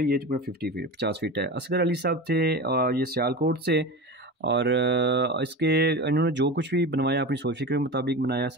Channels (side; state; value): both; normal; correlation 0.27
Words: ये तकरीबन 50 फीट है। असगर अली साहब थे ये सियालकोट से और इसके इन्होंने जो कुछ भी बनवाया अपनी सोच फिक्र के मुताबिक बनाया।